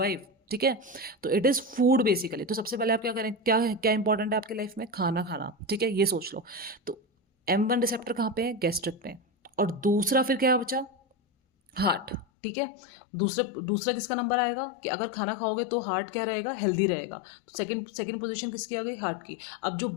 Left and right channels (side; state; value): right; drops out; at 12.2 s